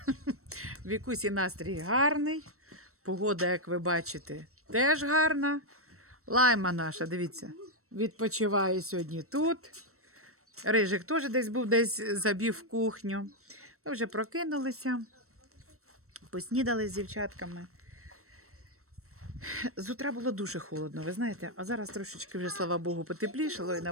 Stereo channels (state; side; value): late; left; 0.63 ms